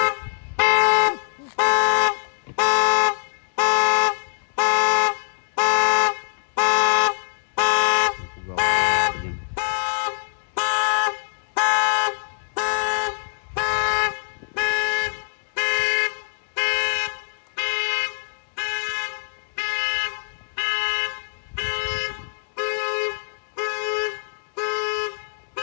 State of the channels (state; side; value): silent; right; digital silence